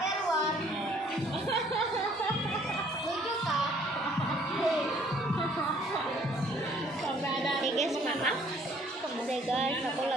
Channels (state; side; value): normal; both; correlation 0.60